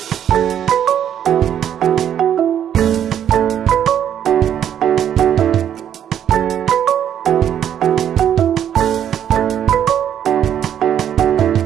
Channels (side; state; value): left; quieter; 9.7 dB